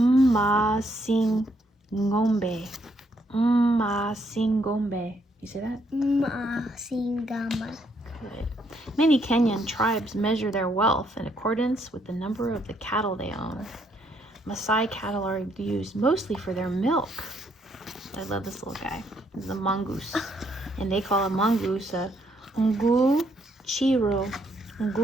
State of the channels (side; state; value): both; normal; correlation 0.72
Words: Mmasingombe. You see that? Mmasingombe. Good. Many Kenyan tribes measure their wealth in accordance with the number of the cattle they own. Maasai cattle are used mostly for their milk. I love this little guy. This is a mongoose. And they call a mongoose a nguchiro.